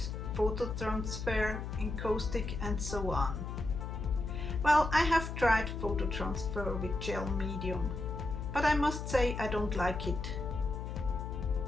photo transfer, encaustic and so on. Well, I have tried photo transfer with gel medium, but I must say I don't like it.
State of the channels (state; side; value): noise; left; hum, 6 dB below the sound